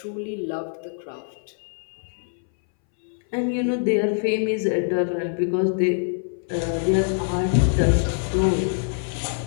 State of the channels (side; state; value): right; silent; 62 dB below the other